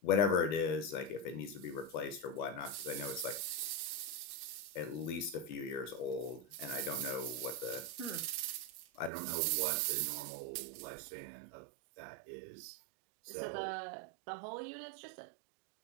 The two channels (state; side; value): drops out; left; at 9.1 s